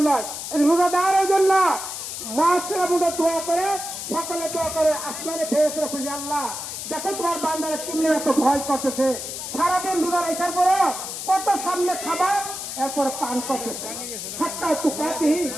নয়। রোজা দেওয়ার জন্য মহাসেরা বুঝে দোয়া করে, সকালে দোয়া করে, আসমানে ফেরেশতারা খুঁজে, আল্লাহ দেখো তোমার বান্দারা কিনে এত ভয় করতেছে, সারাদিন রোজা রাখার পরে কত সামনে খাবার এরপরে পান করতেছে, সাতটায় তো কাটি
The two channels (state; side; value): noise; left; hiss, 7 dB below the sound